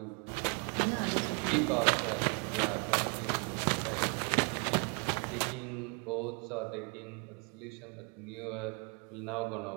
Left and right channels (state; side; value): quieter; left; 34.4 dB